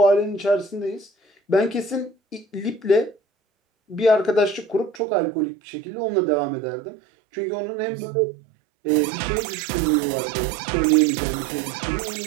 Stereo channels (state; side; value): drops out; left; at 5.0 s